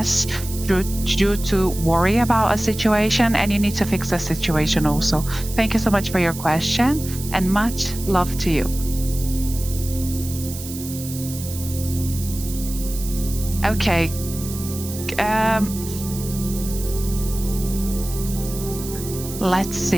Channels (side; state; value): right; noise; hiss, 11 dB below the sound